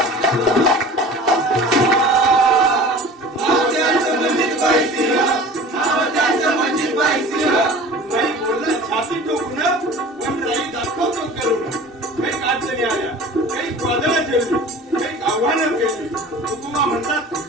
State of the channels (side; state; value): both; normal; correlation 0.41